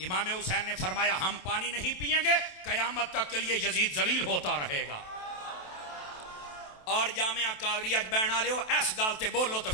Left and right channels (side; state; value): right; late; 27 ms